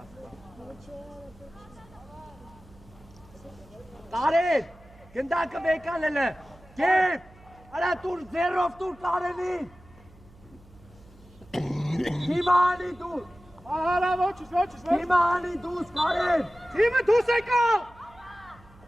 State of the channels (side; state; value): right; noise; hum, 25 dB below the sound